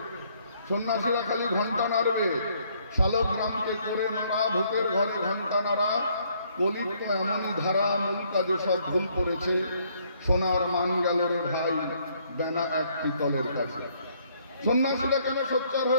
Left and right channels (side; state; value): both; inverted; correlation -0.67